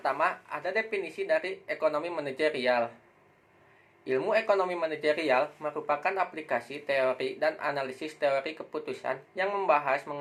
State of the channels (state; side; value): identical; both; correlation 1.00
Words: ada definisi dari ekonomi manajerial. Ilmu ekonomi manajerial merupakan aplikasi teori dan analisis teori keputusan yang membahas